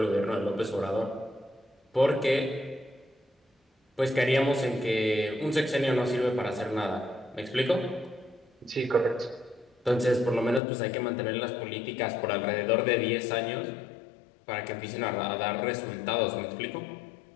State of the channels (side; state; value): right; drops out; at 10.6 s